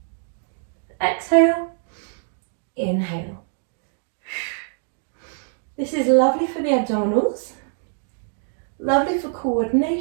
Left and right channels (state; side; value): silent; left; digital silence